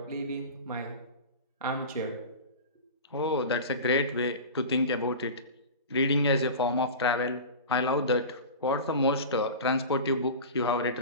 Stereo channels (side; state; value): both; inverted; correlation -0.31